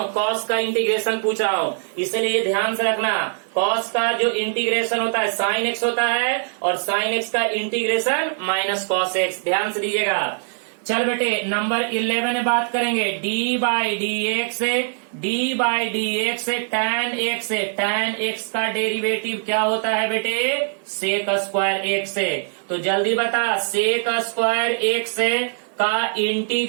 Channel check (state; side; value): silent; left; 64 dB below the other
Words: कॉस का इंटीग्रेशन पूछ रहा हूँ, इसलिए ध्यान से रखना। कॉस का जो इंटीग्रेशन होता है साइन x होता है और साइन x का इंटीग्रेशन माइनस कॉस x, ध्यान से दीजिएगा। चल बेटे नंबर 11 में बात करेंगे। d बाई डी एक्स है, d बाई डी एक्स है tan x है, tan x का डेरिवेटिव क्या होता है बेटे? सेक स्क्वायर x है। तो जल्दी बता, सेक स्क्वायर x है का